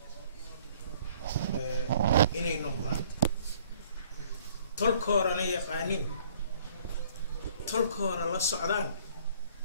inay noqdaan tolkoorana yaqaaniin tolkoora la socdaan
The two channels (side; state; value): both; inverted; correlation -0.57